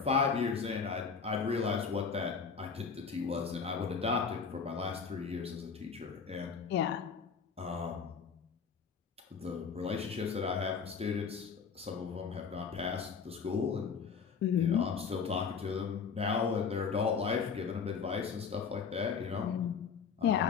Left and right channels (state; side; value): quieter; right; 5.9 dB